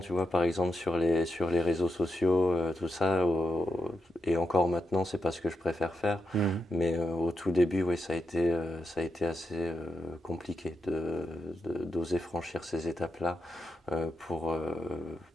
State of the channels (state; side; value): normal; both; correlation 0.86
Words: vois, par exemple sur les réseaux sociaux, tout ça, et encore maintenant, c'est pas ce que je préfère faire, Mhm. mais au tout début, oui, ça a été assez compliqué d'oser franchir ces étapes-là euh, pour, euh,